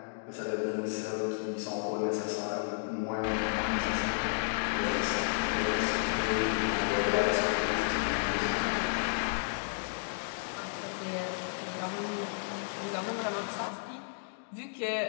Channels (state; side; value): silent; right; digital silence